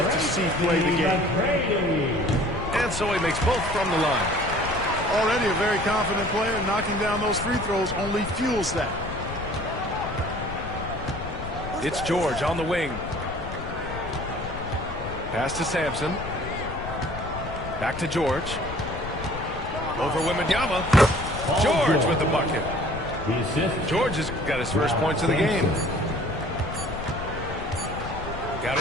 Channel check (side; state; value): left; noise; rumble, 9 dB below the sound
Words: to see play the game. And so he makes both from the line. Already a very confident player. Knocking down those free throws only fuels that. It's George on the wing. Pass to Sampson. Back to George. Over Wembanyama. George with the bucket. George has got his first points of the game. Got